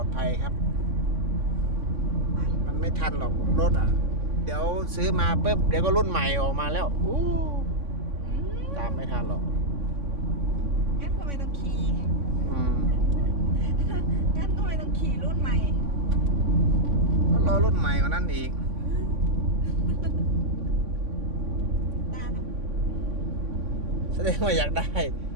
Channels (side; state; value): left; late; 3.5 ms